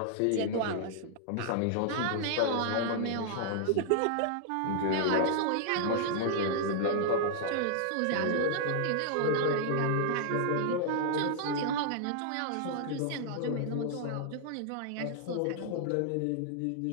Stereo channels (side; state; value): both; different; correlation -0.01